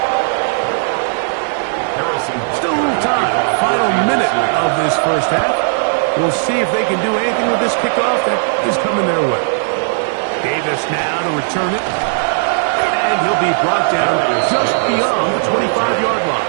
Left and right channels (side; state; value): left; silent; digital silence